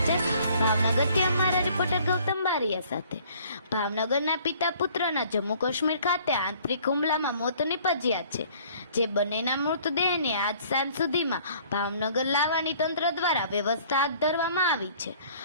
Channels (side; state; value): both; inverted; correlation -0.56